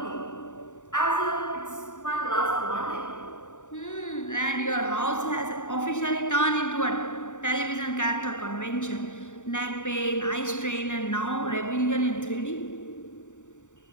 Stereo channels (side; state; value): right; late; 0.86 ms